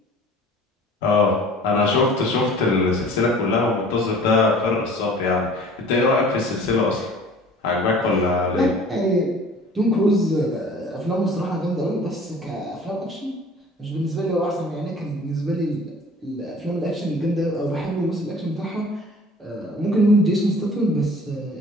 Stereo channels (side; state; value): both; normal; correlation 0.47